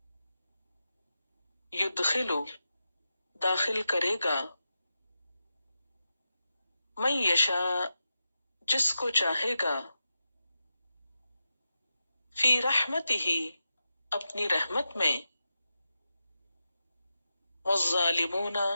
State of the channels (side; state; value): both; inverted; correlation -0.89